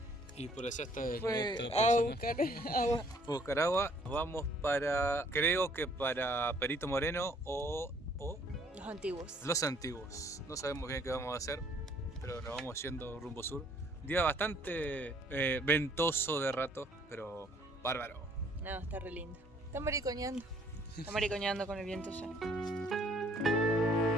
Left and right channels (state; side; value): normal; both; correlation 0.61